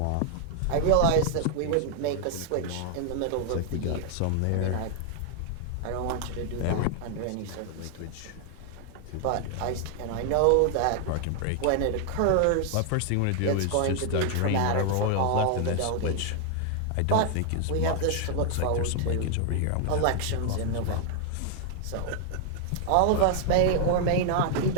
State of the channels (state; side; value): different; both; correlation 0.00